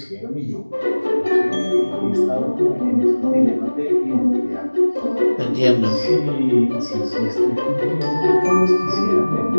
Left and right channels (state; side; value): inverted; both; correlation -1.00